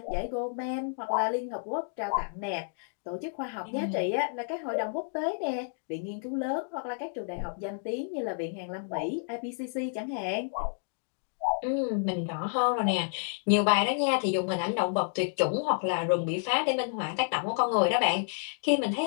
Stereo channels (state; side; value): silent; right; digital silence